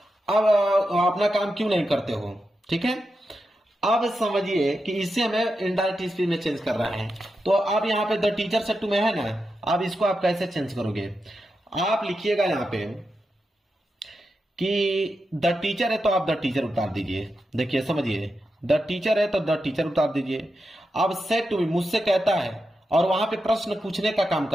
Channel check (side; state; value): both; normal; correlation 0.88